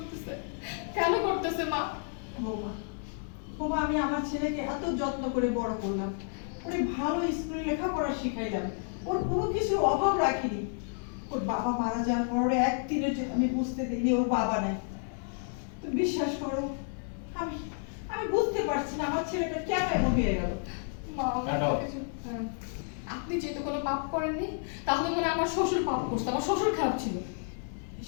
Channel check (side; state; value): right; silent; 57 dB below the other